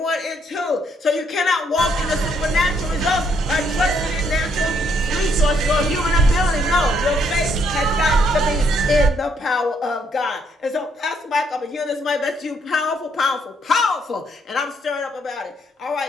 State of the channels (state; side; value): normal; both; correlation 0.71